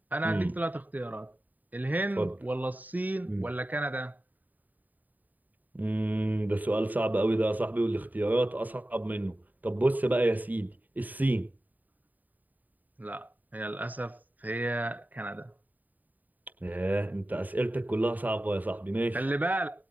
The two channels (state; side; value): late; left; 0.083 ms